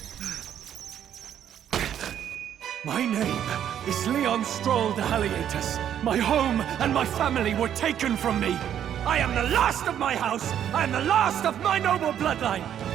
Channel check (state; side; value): quieter; left; 9.9 dB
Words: My name is Leon Stroll de Halietus. My home and my family were taken from me. I am the last of my house. I am the last of my noble bloodline.